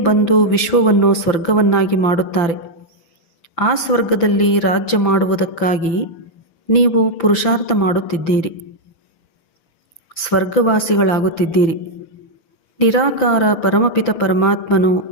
ವಿಶ್ವವನ್ನು ಸ್ವರ್ಗವನ್ನಾಗಿ ಮಾಡುತ್ತಾರೆ. ಆ ಸ್ವರ್ಗದಲ್ಲಿ ರಾಜ್ಯ ಮಾಡುವುದಕ್ಕಾಗಿ ನೀವು ಪುರುಷಾರ್ಥ ಮಾಡುತ್ತಿದ್ದೀರಿ. ಸ್ವರ್ಗವಾಸಿಗಳಾಗುತ್ತಿದ್ದೀರಿ. ನಿರಾಕಾರ ಪರಮಪಿತ ಪರಮಾತ್ಮನು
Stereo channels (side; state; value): right; late; 5.9 ms